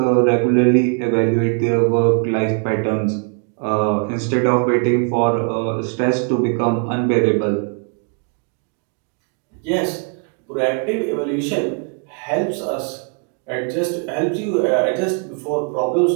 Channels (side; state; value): left; quieter; 38.9 dB